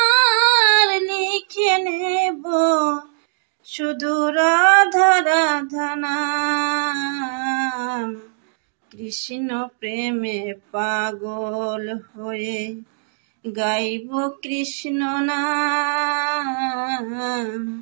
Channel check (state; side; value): silent; left; digital silence